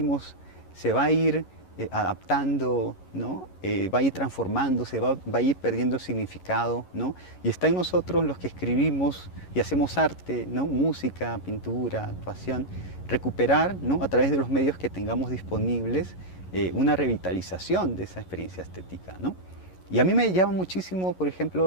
se va a ir adaptando, ¿no? Va a ir transformándose, va a ir perdiendo significado, ¿no? Y está en nosotros los que escribimos y hacemos arte, ¿no? Música, pintura, actuación, recuperar, ¿no? A través de los medios que tengamos disponibles una revitalización de esa experiencia estética, ¿no? Y a mí me llama muchísimo, por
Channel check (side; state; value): right; late; 11 ms